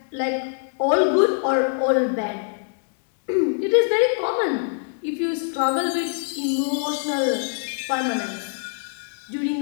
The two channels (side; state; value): right; silent; 63 dB below the other